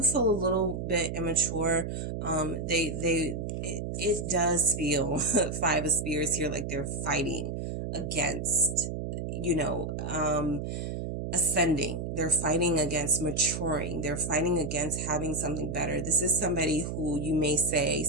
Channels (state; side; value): noise; right; hum, 4 dB below the sound